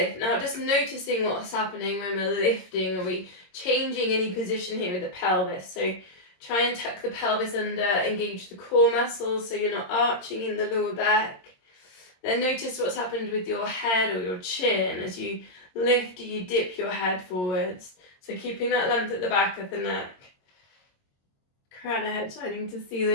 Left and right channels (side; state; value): right; late; 22 ms